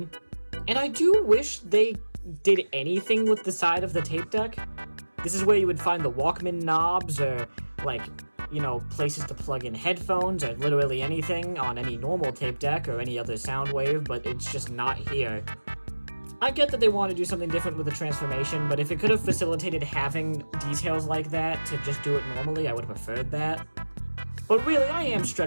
And I do wish they did anything with the side of the tape deck. This is where you would find the Walkman knobs, or, like, you know, places to plug in headphones, or literally anything on any normal tape deck or any other Soundwave, but it's just not here. I get that they want to do something different with the transformation, but if it could have facilitated having details like that to just do it normally, I would have preferred that. But really, I am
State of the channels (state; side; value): inverted; both; correlation -1.00